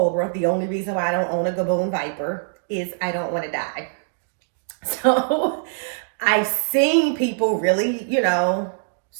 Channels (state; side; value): silent; left; digital silence